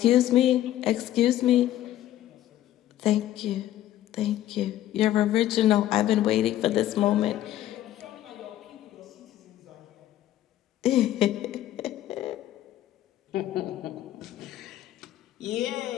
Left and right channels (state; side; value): quieter; right; 13.1 dB